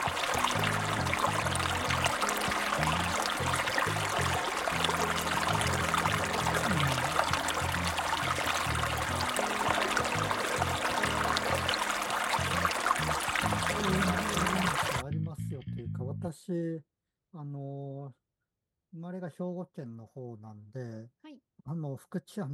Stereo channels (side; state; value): both; identical; correlation 1.00